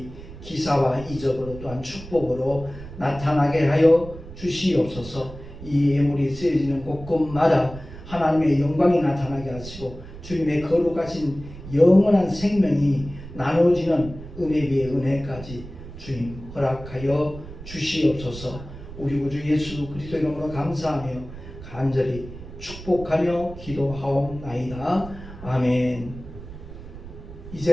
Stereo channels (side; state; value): right; noise; rumble, 14 dB below the sound